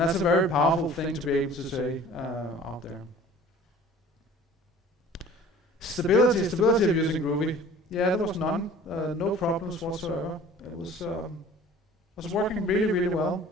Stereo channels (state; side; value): normal; both; correlation 0.48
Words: a very powerful thing to be able to say out there. Stability of using Groovy. Yeah, there was none, no problems whatsoever. It was working really, really well